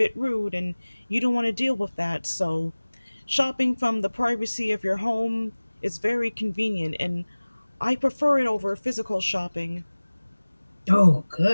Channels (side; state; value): both; inverted; correlation -1.00